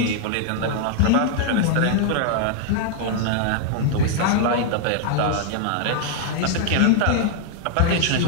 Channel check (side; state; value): both; different; correlation -0.01